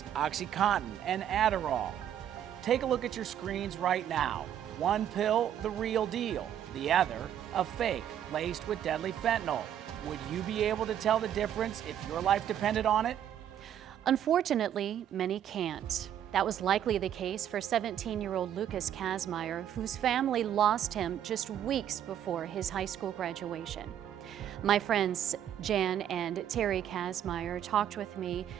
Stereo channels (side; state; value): left; quieter; 10.2 dB